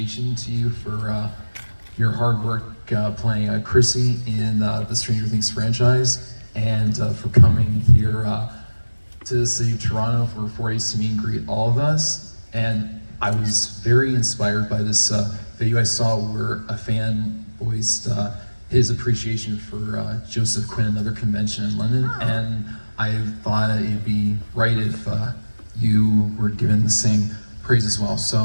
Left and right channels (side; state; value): both; inverted; correlation -1.00